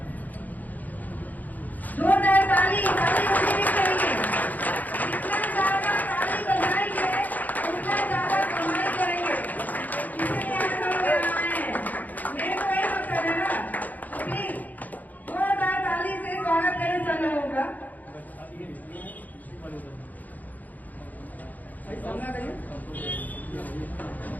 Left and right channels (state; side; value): late; right; 0.081 ms